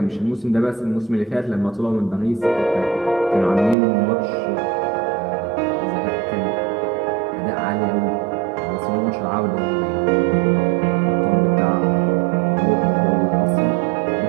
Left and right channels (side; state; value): left; drops out; at 3.8 s